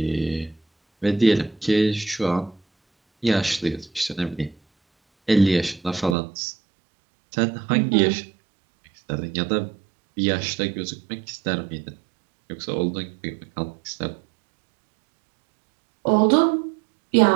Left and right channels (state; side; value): drops out; left; at 6.2 s